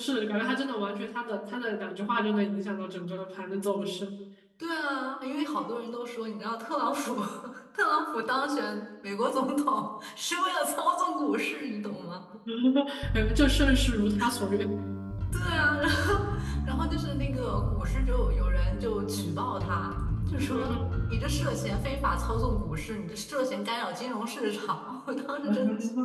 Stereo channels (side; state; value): both; identical; correlation 1.00